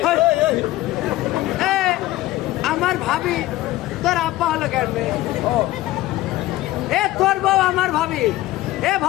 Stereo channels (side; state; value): right; quieter; 16.7 dB